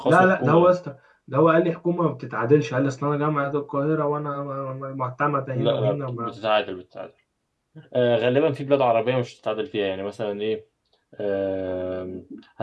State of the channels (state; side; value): identical; both; correlation 1.00